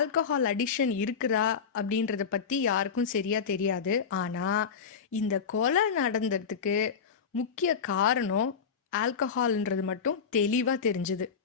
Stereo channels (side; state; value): right; quieter; 6.3 dB